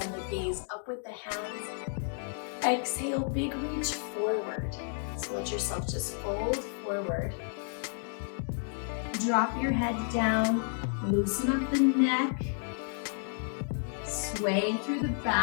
the gaze up with the hands. Exhale, big reach forward. So let yourself just fold forward. Drop your head down, loosen up the neck. Sway through the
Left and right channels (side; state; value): right; silent; 57 dB below the other